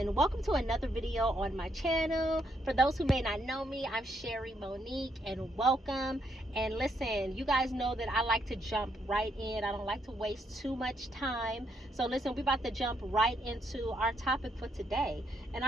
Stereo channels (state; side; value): normal; both; correlation 0.75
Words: welcome to another video on my channel. For those who may not know me, I'm Sherry Monique and welcome. And listen, you guys know that I like to jump right in. I don't like to waste too much time. So listen, we're about to jump right into our topic for today. And